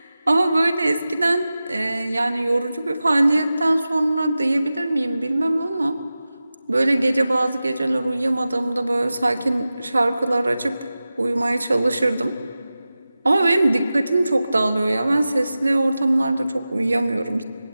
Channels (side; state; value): both; inverted; correlation -0.95